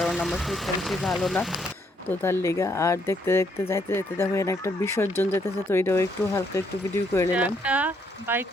আমার শরীরটা বেশি ভালো না, তো তার লেগা। আর দেখতে দেখতে যাইতে যাইতে দেখো এখানে একটা বিসর্জন যেতেছে, তো এটাও একটু হালকা একটু ভিডিও করে নিলাম। একটা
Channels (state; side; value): normal; both; correlation 0.72